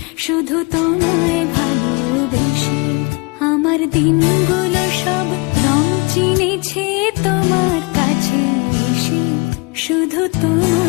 শুধু তোমায় ভালোবেসে। আমার দিনগুলো সব রং চিনেছে তোমার কাছে এসে, শুধু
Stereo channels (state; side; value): quieter; right; 27.9 dB